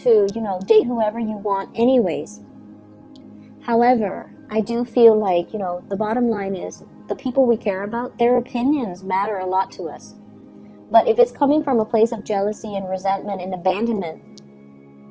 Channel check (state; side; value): identical; both; correlation 1.00